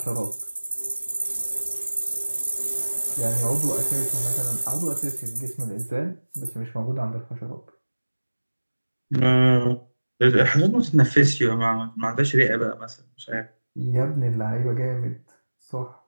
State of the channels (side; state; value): both; inverted; correlation -1.00